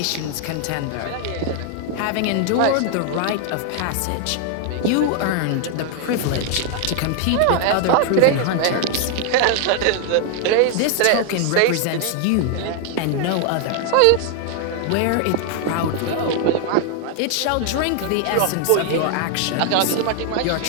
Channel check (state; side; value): different; both; correlation 0.00